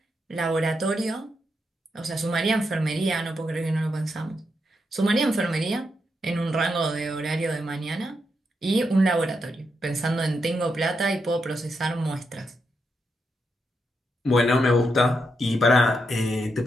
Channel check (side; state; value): both; normal; correlation 0.83